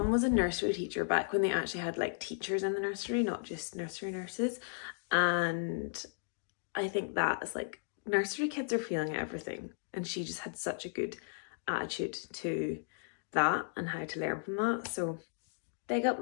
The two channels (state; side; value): silent; right; digital silence